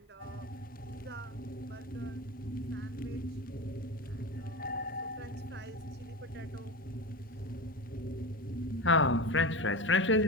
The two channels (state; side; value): normal; both; correlation 0.23